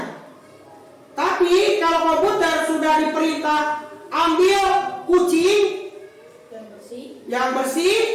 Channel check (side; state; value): both; identical; correlation 1.00